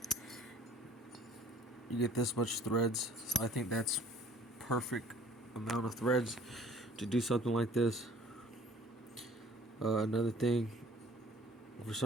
You get this much threads, so I think that's perfect amount of threads to do something like this. Another thing, for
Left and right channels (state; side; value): normal; both; correlation 0.53